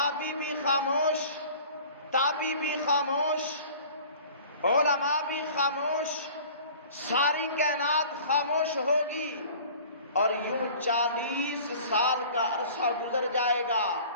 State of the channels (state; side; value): inverted; both; correlation -0.45